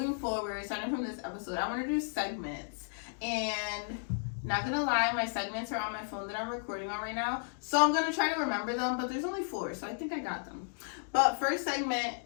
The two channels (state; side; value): silent; right; digital silence